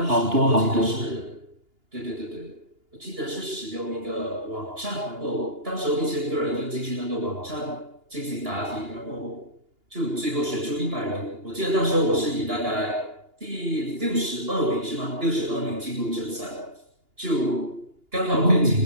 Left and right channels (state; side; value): late; left; 2.8 ms